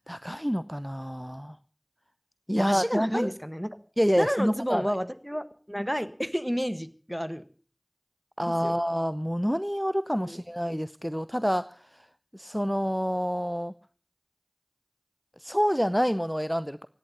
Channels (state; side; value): identical; both; correlation 1.00